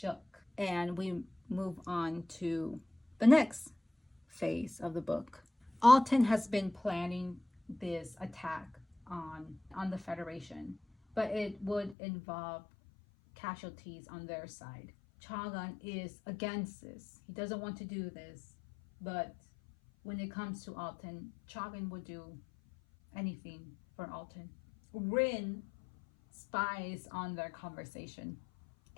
And we move on to the next phase of the book. Alton has been planning this attack on the Federation, but it would involve casualties on their side. Chagan is against this. He doesn't want to do this, but when it comes to Alton, Chagan would do anything for Alton. Rin spies on their conversation,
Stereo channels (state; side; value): drops out; right; at 12.0 s